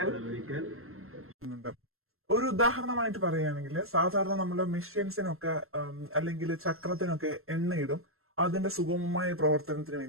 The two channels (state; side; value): late; left; 0.62 ms